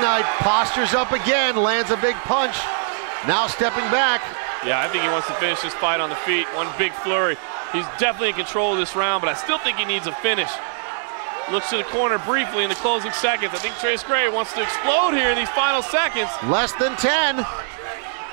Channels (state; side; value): silent; left; digital silence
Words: postures up again, lands a big punch. Now stepping back. Yeah, I think he wants to finish this fight on the feet. One big flurry. He's definitely in control of this round, but I still think he needs a finish. Looks to the corner briefly in the closing seconds. I think Trace Gray wants to explode here in these final seconds. Less than 10.